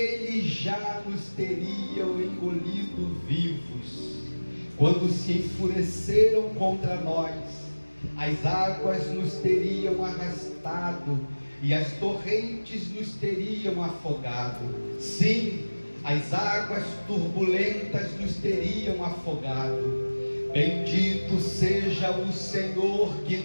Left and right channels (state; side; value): inverted; both; correlation -1.00